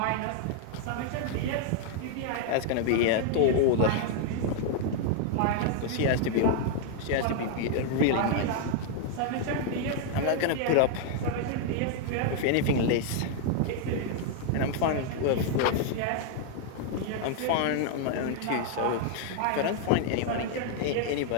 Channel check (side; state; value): both; different; correlation 0.00